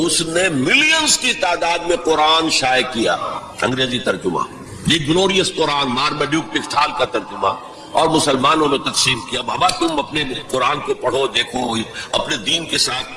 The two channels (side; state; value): both; identical; correlation 1.00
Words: اس نے ملینز کی تعداد میں قرآن شائع کیا، انگریزی ترجمہ، یہ گلوریس قرآن، مارمیڈیوک پکتھال کا ترجمہ، اور مسلمانوں میں تقسیم کیا۔ بابا تم اپنے قرآن کو پڑھو، دیکھو، اپنے دین کے